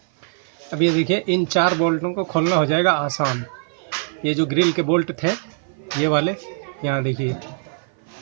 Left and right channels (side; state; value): left; silent; 57 dB below the other